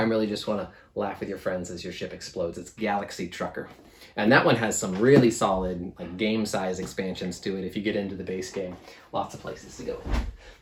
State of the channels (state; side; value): identical; both; correlation 1.00